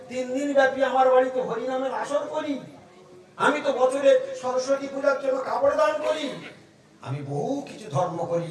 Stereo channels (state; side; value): identical; both; correlation 1.00